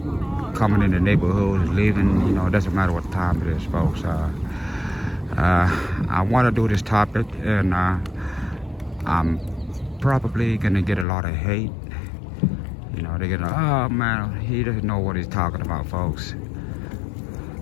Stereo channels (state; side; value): drops out; right; at 11.1 s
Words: coming in the neighborhood, leaving, it doesn't matter what time it is, folks. I want to do this topic, and I'm probably gonna get a lot of hate. They're gonna, oh man, he doesn't know what he's talking about, folks.